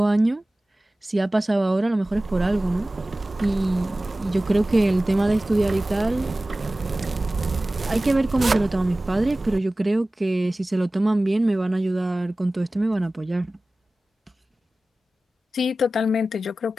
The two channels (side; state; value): both; normal; correlation 0.97